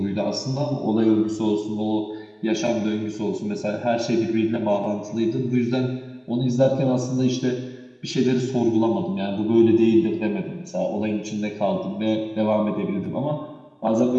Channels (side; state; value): both; identical; correlation 1.00